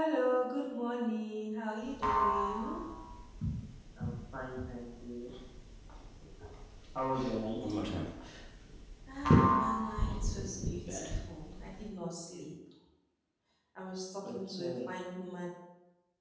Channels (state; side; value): identical; both; correlation 1.00